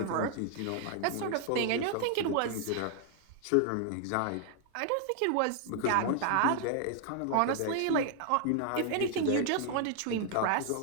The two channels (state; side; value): different; both; correlation 0.00